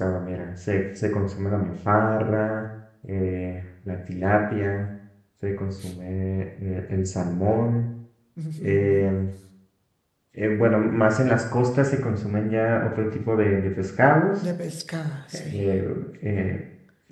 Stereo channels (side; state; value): both; identical; correlation 1.00